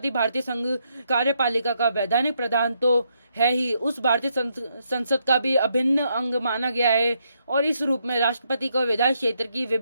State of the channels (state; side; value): inverted; both; correlation -0.77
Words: भारतीय संघ कार्यपालिका का वैधानिक प्रधान तो है ही, उस भारतीय संसद का भी अभिन्न अंग माना गया है और इस रूप में राष्ट्रपति को विधायी क्षेत्र की